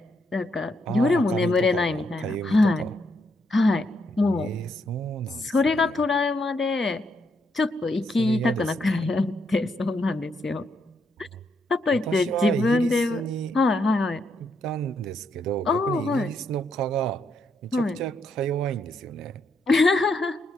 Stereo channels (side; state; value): both; normal; correlation 0.77